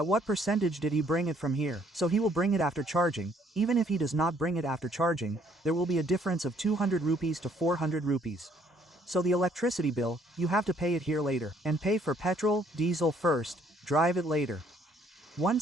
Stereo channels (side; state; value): both; normal; correlation 0.64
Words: what percentage did he bring it from here? So he will bring it after charging. Even if he does not bring it after charging, there will be a difference of 200 rupees to 400 rupees. So the electricity bill, you have to pay it here later. And pay for petrol, diesel first, drive it later. One